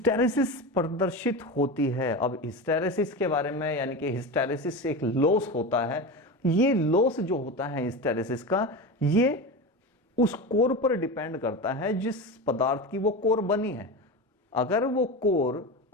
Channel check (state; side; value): normal; both; correlation 0.24